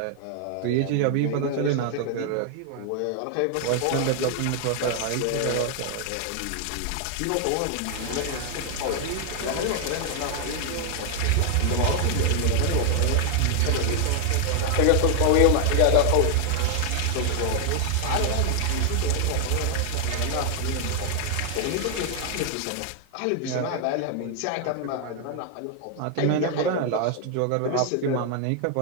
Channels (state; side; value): different; both; correlation 0.00